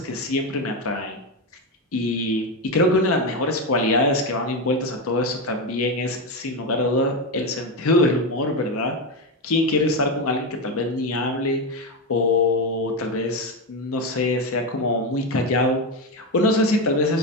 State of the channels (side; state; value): both; normal; correlation 0.12